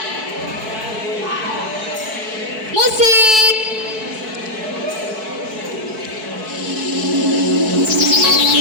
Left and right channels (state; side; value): late; left; 4.6 ms